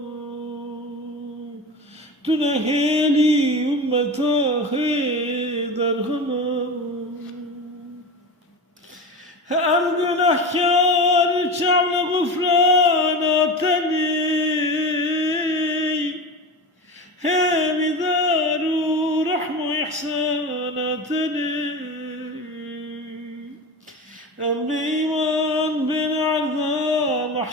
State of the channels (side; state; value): both; normal; correlation 0.27